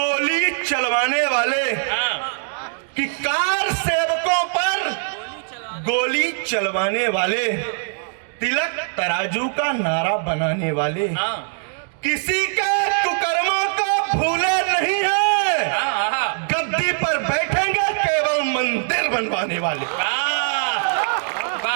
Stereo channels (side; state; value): left; silent; 65 dB below the other